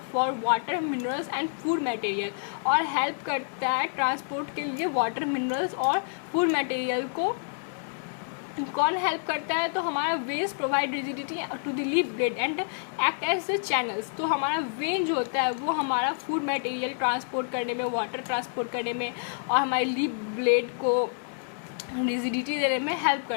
for water minerals and food material, और हेल्प करता है ट्रांसपोर्ट के लिए वाटर मिनरल्स और फूड मटेरियल को। कौन हेल्प करता है, तो हमारा veins provide rigidity to the leaf blade and act as the channels. तो हमारा वेन जो होता है वो हमारा फूड मटेरियल ट्रांसपोर्ट करने में, वाटर ट्रांसपोर्ट करने में और हमारे लीफ ब्लेड को रिजिडिटी देने में हेल्प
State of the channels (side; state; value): right; silent; digital silence